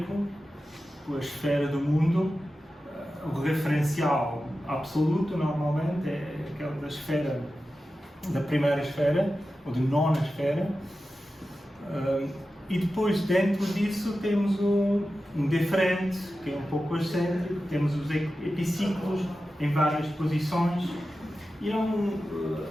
a esfera do mundo, o referencial absoluto normalmente é aquela da primeira esfera, ou de nona esfera, e depois dentro disso temos um deferente, que é um pouco excêntrico, temos os epiciclos em várias posições, e eu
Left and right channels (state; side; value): normal; both; correlation 0.93